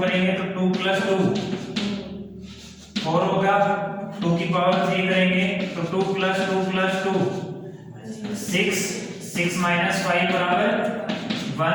करेंगे तो 2 प्लस 2 4 होगा, 2 की पावर 3 करेंगे तो 2 प्लस 2 प्लस 2 6, 6 माइनस 5 बराबर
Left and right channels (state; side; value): identical; both; correlation 1.00